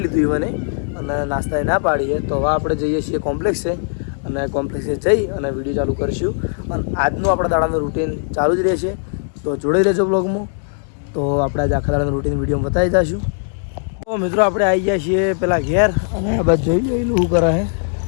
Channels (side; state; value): right; silent; digital silence